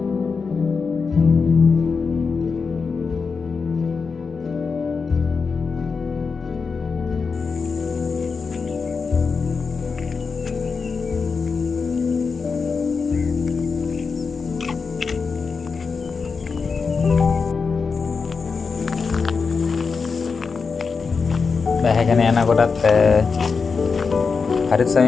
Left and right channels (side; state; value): right; quieter; 5.0 dB